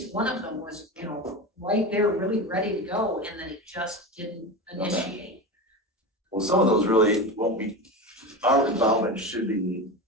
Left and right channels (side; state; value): both; normal; correlation 0.24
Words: one of them was, right there, really ready to go, and then it just didn't initiate. Well, some of those really won't be, our involvement should be